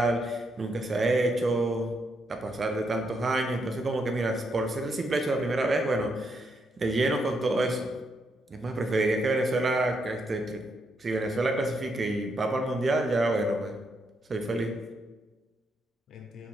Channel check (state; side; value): normal; both; correlation 0.78